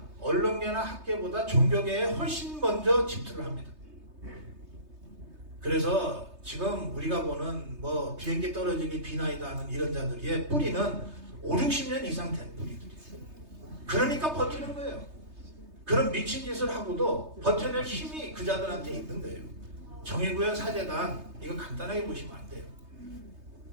언론계나 학계보다 종교계에 훨씬 먼저 침투를 합니다. 그래서 지금 우리가 보는 뭐 비행기 떨어지기 비나이다 하는 이런 자들의 뿌리는 5, 60년 이상 된 뿌리들이에요. 그러니까 버티는 거예요. 그런 미친 짓을 하고도 버텨낼 힘이 그 자들한테 있는 거예요. 정의구현 사재단 이거 간단하게 보시면 안 돼요.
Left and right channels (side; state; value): left; late; 3.3 ms